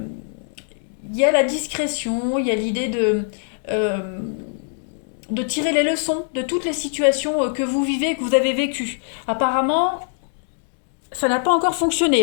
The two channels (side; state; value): right; silent; 64 dB below the other